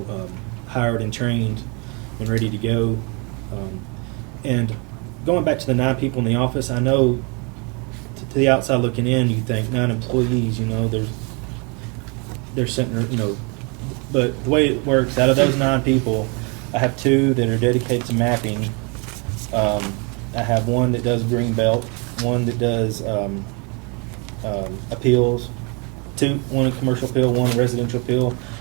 hired and trained and ready to go. And going back to the 9 people in the office, I know to the outside looking in, you think 9 employees, you know, they're sitting, you know, but the way it works, out of those 9 people, I have 2 that are dedicated to mapping. I have 1 that does green belt, 1 that does appeals, 1 in commercial appeal, 1 in residential appeal,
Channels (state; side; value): quieter; left; 32.5 dB